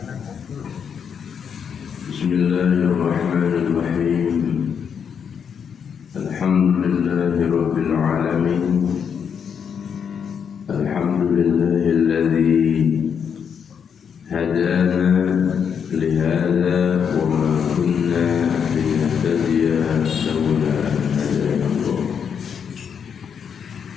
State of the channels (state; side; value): quieter; right; 7.2 dB